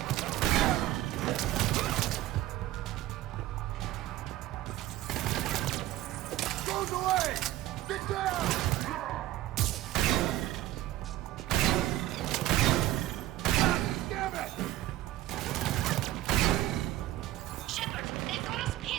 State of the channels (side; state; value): left; quieter; 15.3 dB